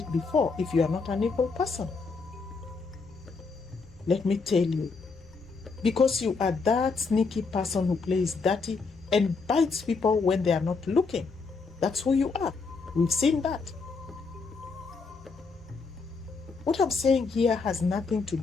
before if you are not an evil person? Let me tell you, because you are that sneaky person who plays dirty and bites people when they are not looking. That's who you are. We've seen that. What I'm saying here has nothing to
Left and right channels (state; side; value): quieter; right; 4.5 dB